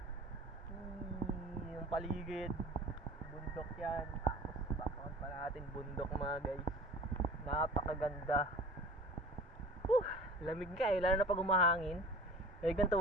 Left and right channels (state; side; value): normal; both; correlation 0.42